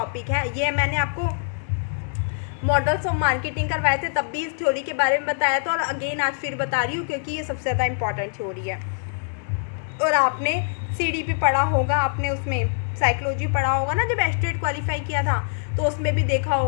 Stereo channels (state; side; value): silent; right; digital silence